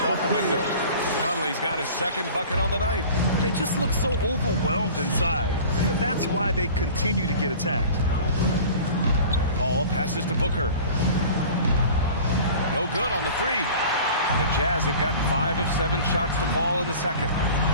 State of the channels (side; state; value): both; inverted; correlation -0.41